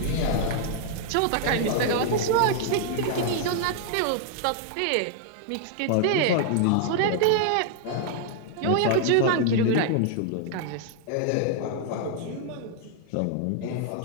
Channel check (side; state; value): both; different; correlation -0.01